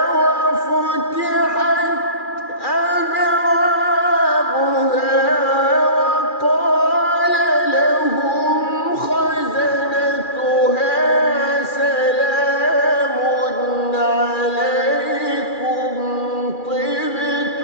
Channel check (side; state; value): right; late; 2.4 ms